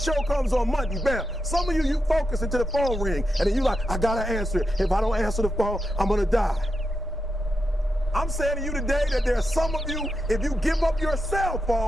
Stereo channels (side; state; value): both; normal; correlation 0.87